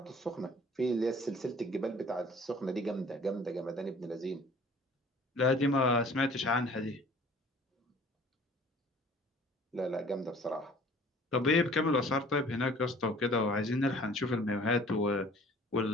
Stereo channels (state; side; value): normal; both; correlation 0.51